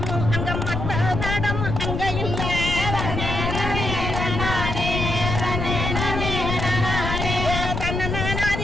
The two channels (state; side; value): noise; left; rumble, 3 dB below the sound